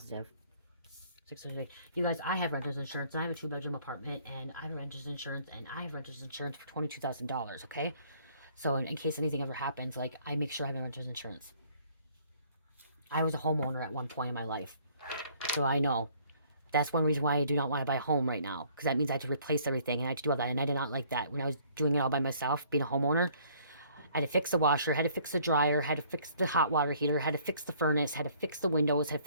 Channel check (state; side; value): inverted; both; correlation -0.59